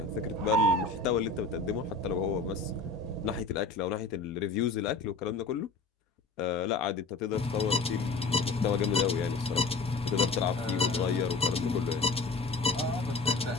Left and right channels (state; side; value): quieter; right; 3.7 dB